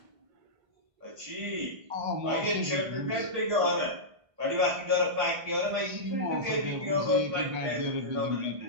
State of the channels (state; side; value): late; left; 1.5 ms